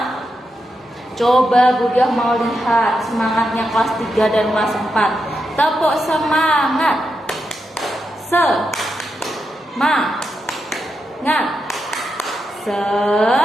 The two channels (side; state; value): both; normal; correlation 0.86